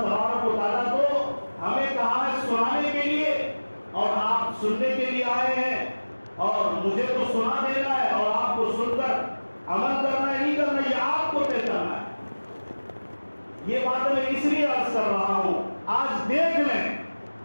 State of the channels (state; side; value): inverted; both; correlation -1.00